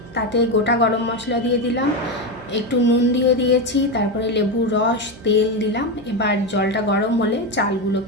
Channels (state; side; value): noise; right; hum, 20 dB below the sound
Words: তাতে গোটা গরম মশলা দিয়ে দিলাম, একটু নুন দিয়ে দিয়েছি, তারপরে লেবুর রস তেল দিলাম। এবার জলটা গরম হলে